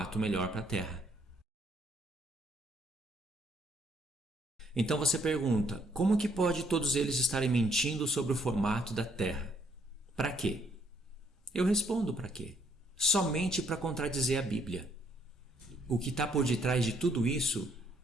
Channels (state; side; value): normal; both; correlation 0.68